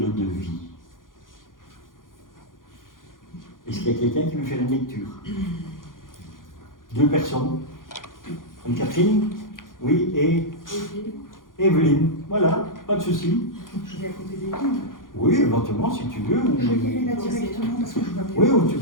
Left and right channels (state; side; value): late; right; 0.90 ms